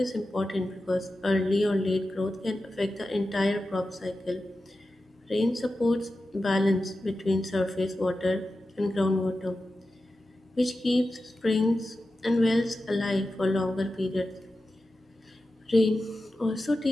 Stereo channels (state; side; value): normal; both; correlation 0.92